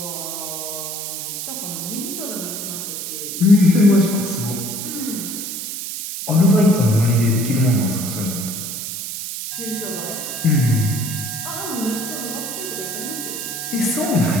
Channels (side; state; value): right; noise; hiss, 6 dB below the sound